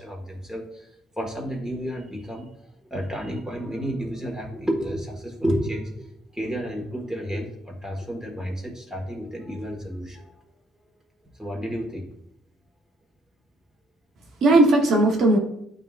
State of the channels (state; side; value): normal; both; correlation 0.69